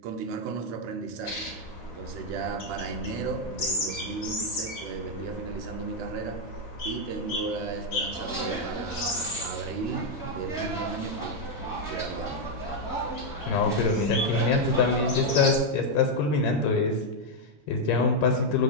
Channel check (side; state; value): both; normal; correlation 0.00